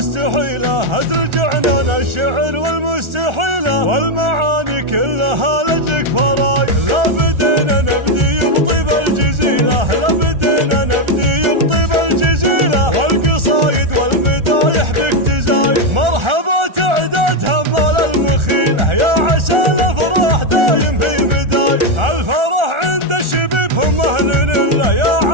هزر عنان الشعر والمستحيلة، والمعاني كلها لجلك فراي، لا بدينا نبدي بطيب الجزيلة، لا بدينا نبدي بطيب الجزيلة، والقصايد والمدايح بك تزاي، مرحبا تعداد همال المخيلة، يا عسى الافراح دايم هي مداي، الفرح عند الشبيب هم اهل الله، يا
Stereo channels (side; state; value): left; late; 1.4 ms